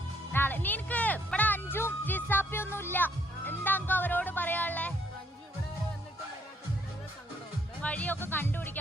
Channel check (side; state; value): both; normal; correlation 0.68